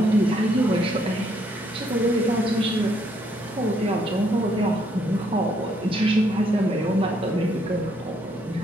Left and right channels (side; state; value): both; normal; correlation 0.71